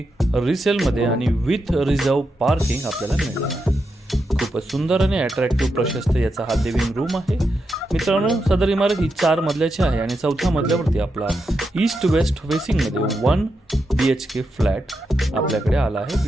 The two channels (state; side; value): normal; both; correlation 0.85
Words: रिसेलमध्ये आणि विथ रिझर्व पार्किंग आपल्याला मिळणार आहे. खूपच सुंदर आणि अट्रॅक्टिव्ह प्रशस्त याचा हा लिव्हिंग रूम आहे. मित्रांनो, सदर इमारत ही 4 मजल्याची आहे आणि 4थ्या मजल्यावरती आपला ईस्ट वेस्ट फेसिंगमध्ये 1 BHK फ्लॅट आपल्याकडे आला आहे